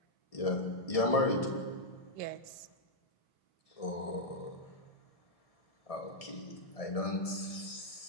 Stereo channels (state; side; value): late; right; 1.7 ms